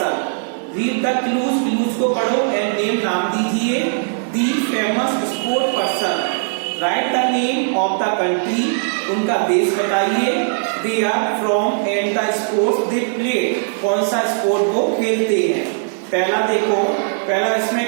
Read the clues, clues को पढ़ो एंड नेम नाम दीजिए the famous sport person. Write the name of the country, उनका देश बताइए। They are from and the sports they play, कौन सा sport वो खेलते हैं। पहला देखो, पहला इसमें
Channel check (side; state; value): left; silent; digital silence